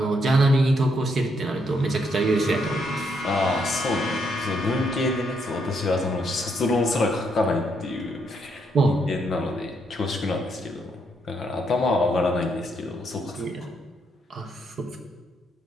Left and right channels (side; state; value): both; normal; correlation 0.75